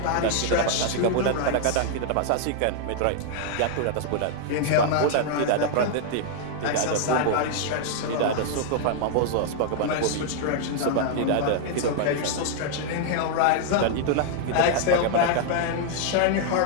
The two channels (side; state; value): both; different; correlation -0.01